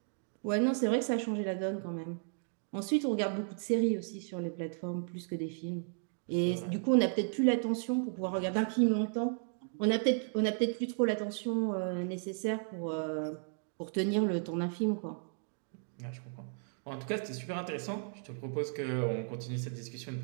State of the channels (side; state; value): left; silent; 55 dB below the other